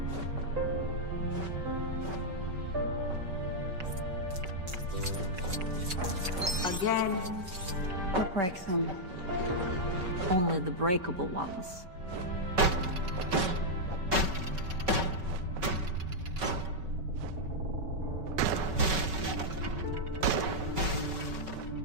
Again. What breaks them? Only the breakable ones.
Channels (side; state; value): left; late; 5.3 ms